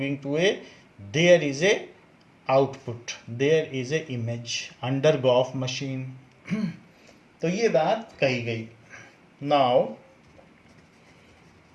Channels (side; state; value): both; identical; correlation 1.00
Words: to A there is a output, there is a image under gof machine. तो ये बात कही गई। नाउ